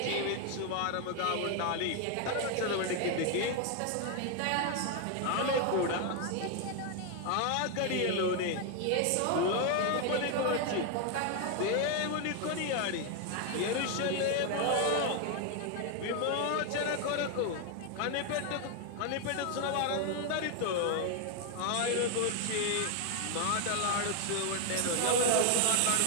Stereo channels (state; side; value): different; both; correlation 0.00